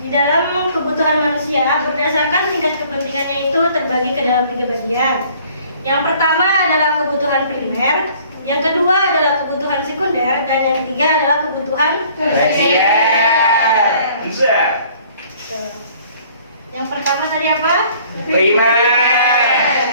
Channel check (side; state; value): both; inverted; correlation -0.56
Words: di dalam kebutuhan manusia berdasarkan tingkat kepentingannya itu terbagi ke dalam 3 bagian. Yang pertama adalah kebutuhan primer, yang kedua adalah kebutuhan sekunder, dan yang ketiga adalah kebutuhan tersier. Bisa. Yang pertama tadi apa? Primer.